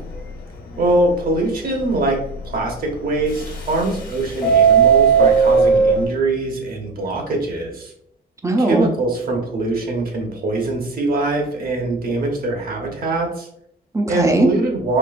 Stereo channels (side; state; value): left; quieter; 3.4 dB